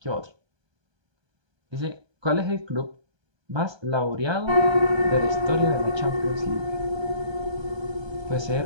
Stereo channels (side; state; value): left; late; 1.3 ms